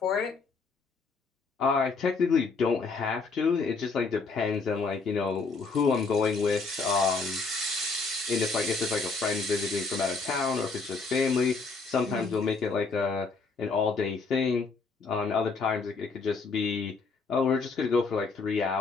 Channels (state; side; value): quieter; right; 4.4 dB